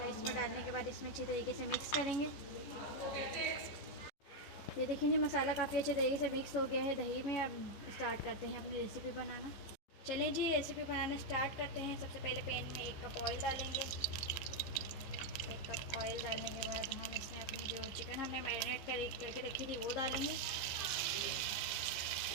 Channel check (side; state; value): right; late; 15 ms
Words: इसमें डालने के बाद इसमें अच्छी तरीके से मिक्स करेंगे। ये देखिए जी, मसाला काफ़ी अच्छे तरीके से मिक्स हो गया है दही में। अब स्टार्ट करते हैं अपनी रेसिपी बनाना। चलिए जी, रेसिपी बनाना स्टार्ट करते हैं। सबसे पहले पैन में 1 कप ऑयल डालेंगे। 1 कप ऑयल डालने के बाद हम इसमें अपनी जो चिकन हमने मैरिनेट करके रखी थी वो डालेंगे।